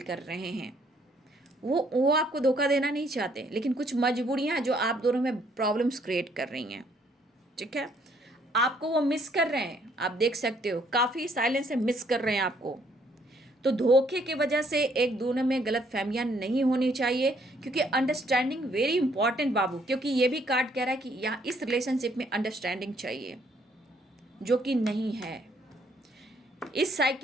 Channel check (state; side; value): normal; both; correlation 0.66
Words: कर रहे हैं। वो आपको धोखा देना नहीं चाहते, लेकिन कुछ मजबूरियाँ हैं जो आप दोनों में प्रॉब्लम्स क्रिएट कर रही हैं। ठीक है, आपको वो मिस कर रहे हैं, आप देख सकते हो, काफ़ी साइलेंस से मिस कर रहे हैं आपको। तो धोखे की वजह से एक दोनों में गलत फहमियाँ नहीं होनी चाहिए, क्योंकि अंडरस्टैंडिंग वेरी इंपॉर्टेंट बाबू। क्योंकि ये भी कार्ड कह रहा है कि यहाँ इस रिलेशनशिप में अंडरस्टैंडिंग चाहिए। जो कि नहीं है। इस